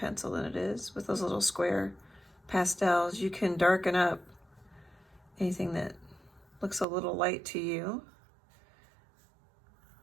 than it is with those little square pastels. You can darken up anything that looks a little light to you.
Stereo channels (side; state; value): left; drops out; at 6.9 s